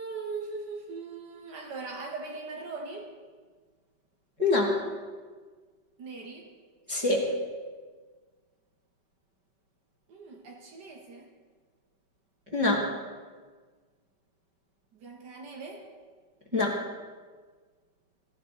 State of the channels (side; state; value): left; late; 5.2 ms